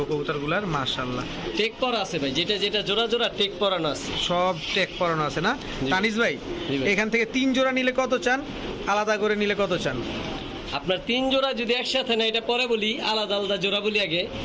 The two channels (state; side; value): identical; both; correlation 1.00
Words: কবুতরগুলার, মাশাআল্লাহ। টেক পরা আছে ভাই, যেটা যেটা জোড়া জোড়া টেক পরানো আছে। সব টেক পরানো আছে না? তানিস ভাই, এখান থেকে 3 জোড়া নিলে কত চান? আলাদা করে নিলে কত চান? আপনার 3 জোড়া যদি একসাথে না, এটা পরে বলি, আলাদা আলাদা জোড়া বলি আগে।